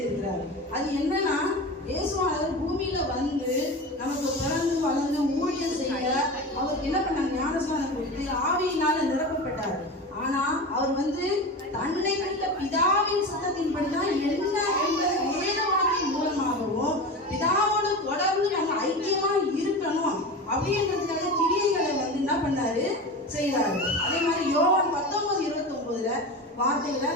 அது என்னன்னா, இயேசுவானவர் பூமியில வந்து நமக்கு பிறந்து வளர்ந்து ஊழியம் செய்ய அவருக்கு என்ன பண்ணாங்க, ஞானஸ்நானம் கொடுத்து ஆவியினால நிரப்பப்பட்டார். ஆனா அவர் வந்து தன்னை வைத்த பிதாவின் சத்தத்தின்படிதான் என்ன என்பது வேத வாக்கின் மூலமாகவும் பிதாவோடு தொடர்ந்து நம்ம ஐக்கியமா இருக்கணும் அப்படின்றதுக்காக கிரியைகளை வந்து என்ன பண்ணாரு, செய்யறாரு. அதே மாதிரி யோவான் 19:29 வார்த்தைகளை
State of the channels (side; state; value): both; normal; correlation 0.28